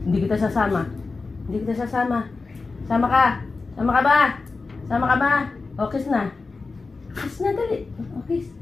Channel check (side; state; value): right; quieter; 4.0 dB